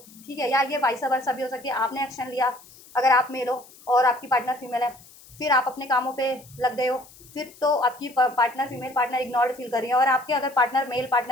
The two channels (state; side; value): noise; left; hiss, 23 dB below the sound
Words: ठीक है, या ये वाइस वर्सा भी हो सकती है, आपने एक्शन लिया अगर आप मेल हो और आपकी पार्टनर फीमेल है, फिर आप अपने कामों पे लग गए हो, फिर तो आपकी partner female partner ignored feel कर रही है, और आपके अगर पार्टनर मेल